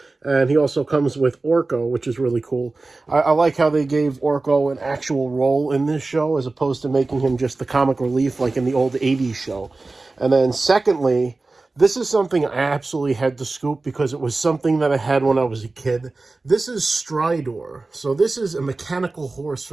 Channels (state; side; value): quieter; left; 3.4 dB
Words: And he also comes with Orko, which is really cool. I like how they gave Orko an actual role in this show as opposed to making him just the comic relief like in the old 80s show. And then secondly, this is something I absolutely had to scoop because it was something that I had when I was a kid. This is Stridor. So this is a mechanical horse